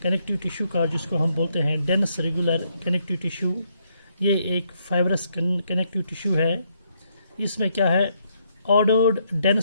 connective tissue का, जिसको हम बोलते हैं डेंस रेगुलर कनेक्टिव टिश्यू, ये एक फाइब्रस कनेक्टिव टिश्यू है. इसमें क्या है, ordered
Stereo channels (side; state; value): both; inverted; correlation -0.75